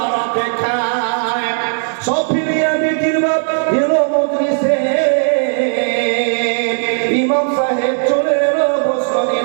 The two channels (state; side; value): silent; left; digital silence